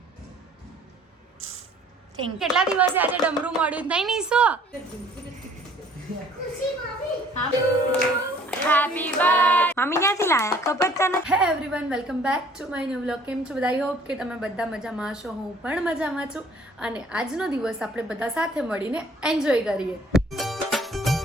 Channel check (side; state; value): both; normal; correlation 0.55